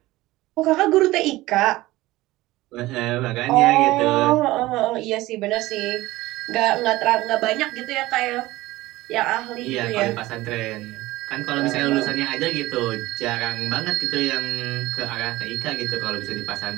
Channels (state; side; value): quieter; left; 18.3 dB